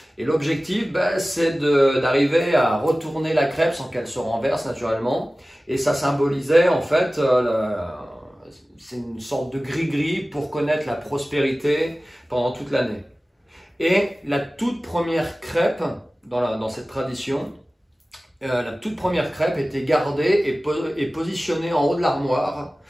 Et l'objectif, c'est d'arriver à retourner la crêpe sans qu'elle se renverse naturellement. Et ça symbolisait, en fait, c'est une sorte de gris-gris pour connaître la prospérité pendant toute l'année. Et la toute première crêpe, dans cette tradition, la toute première crêpe était gardée et positionnée en haut de l'armoire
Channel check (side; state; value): both; normal; correlation 0.97